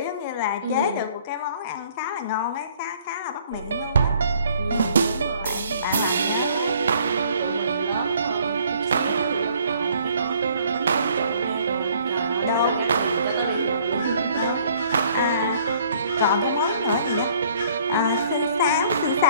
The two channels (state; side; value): inverted; both; correlation -0.59